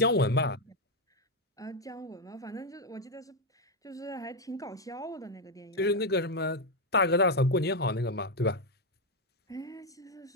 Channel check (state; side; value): normal; both; correlation 0.05